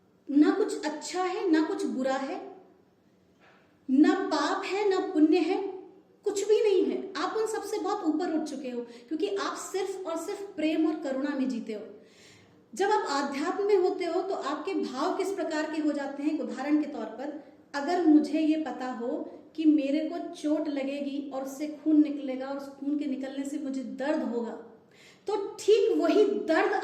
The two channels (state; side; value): identical; both; correlation 1.00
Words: ना कुछ अच्छा है ना कुछ बुरा है, ना पाप है ना पुण्य है, कुछ भी नहीं है। आप उन सबसे बहुत ऊपर उठ चुके हो, क्योंकि आप सिर्फ और सिर्फ प्रेम और करुणा में जीते हो। जब आप आध्यात्म में होते हो तो आपके भाव किस प्रकार के हो जाते हैं? उदाहरण के तौर पर, अगर मुझे ये पता हो कि मेरे को चोट लगेगी और उससे खून निकलेगा और उस खून के निकलने से मुझे दर्द होगा, तो ठीक वही दर्द